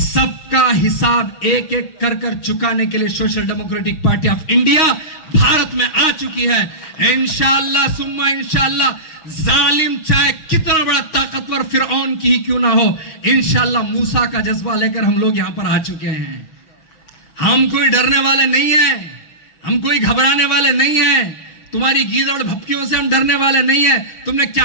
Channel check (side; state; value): right; late; 6.3 ms